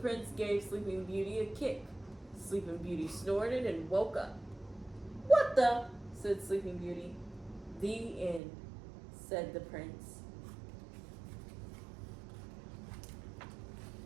gave Sleeping Beauty a kick. Sleeping Beauty snorted and woke up. "What the?" said Sleeping Beauty. "The end," said the prince.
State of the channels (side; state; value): left; drops out; at 8.4 s